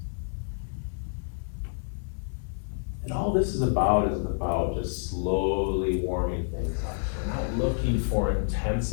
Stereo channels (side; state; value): right; silent; digital silence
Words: And all this is about just slowly warming things up. We're not looking for